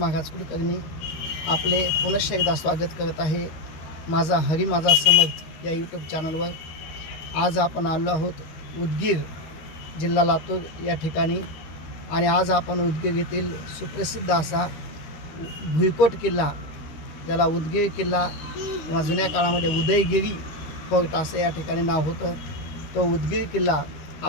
महाराज कुलकर्णी आपले पुनश्च एकदा स्वागत करत आहे माझा हरी माझा समर्थ या यूट्यूब चॅनलवर. आज आपण आलो आहोत उदगीर जिल्हा लातूर या ठिकाणी आणि आज आपण उदगीर येथील सुप्रसिद्ध असा भुईकोट किल्ला, ज्याला उदगीर किल्ला किंवा जुन्या काळामध्ये उदयगिरी फोर्ट असं या ठिकाणी नाव होतं, तो उदगीर किल्ला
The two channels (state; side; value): late; right; 13 ms